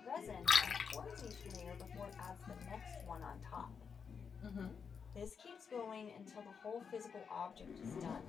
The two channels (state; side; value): quieter; right; 6.3 dB